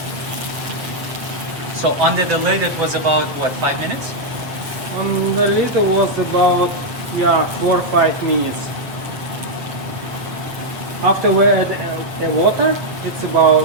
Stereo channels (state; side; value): late; left; 8.1 ms